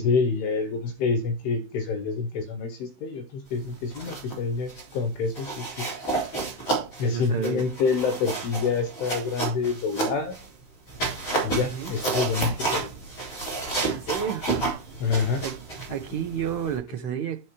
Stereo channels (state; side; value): late; right; 16 ms